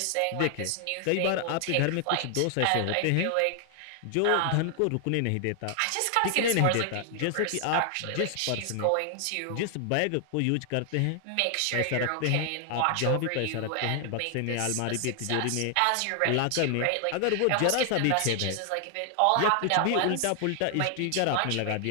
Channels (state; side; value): different; both; correlation 0.00